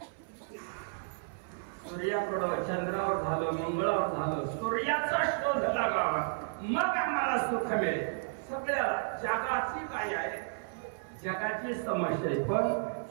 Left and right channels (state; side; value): silent; left; 56 dB below the other